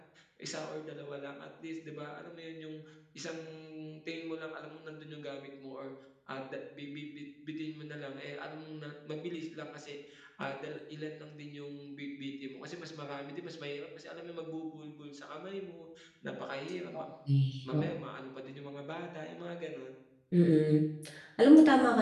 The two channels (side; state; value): both; identical; correlation 1.00